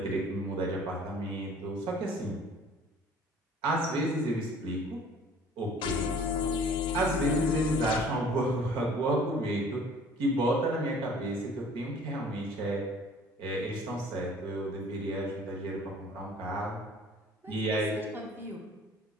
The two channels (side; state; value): both; normal; correlation 0.51